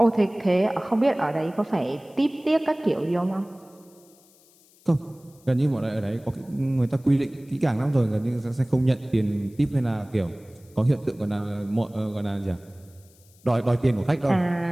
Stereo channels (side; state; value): left; noise; hiss, 29 dB below the sound